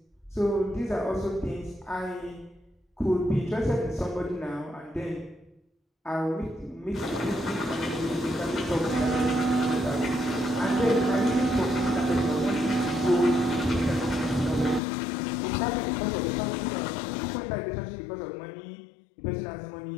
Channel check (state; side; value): drops out; right; at 14.8 s